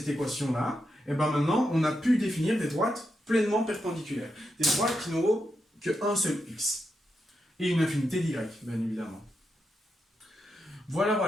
équation-là, et maintenant, on a pu définir des droites pleinement perpendiculaires. Des droites qui n'auront qu'un seul x. Et une infinité d'y, bien évidemment. Voilà,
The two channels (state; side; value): normal; both; correlation 0.85